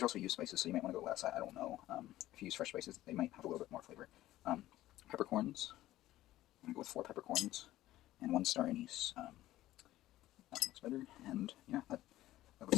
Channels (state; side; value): quieter; right; 15.1 dB